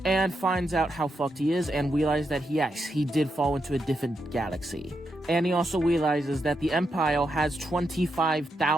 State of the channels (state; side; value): normal; both; correlation 0.83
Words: and finds out how fucked he is, and realizes that yes, he did fall into a different galaxy. And he also realizes that the Empire has